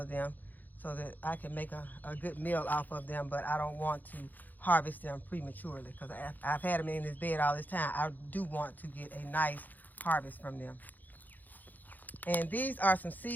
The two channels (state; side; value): late; right; 0.084 ms